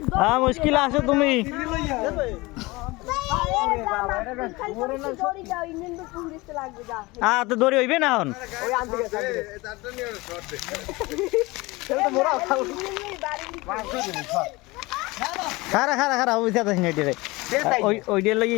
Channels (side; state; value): right; quieter; 22.5 dB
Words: হ্যাঁ মুশকিল আছো তুমি তো দড়ি হইবে না এখন ওই আনতে গেছে তারটা নিয়ে শর্ট দে সেটা তো মোরা খাও খারা খারা খারা ওই সাথে নেটে রে ওই ডের লাগি